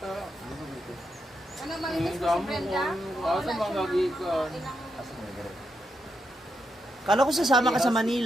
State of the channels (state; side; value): normal; both; correlation 0.82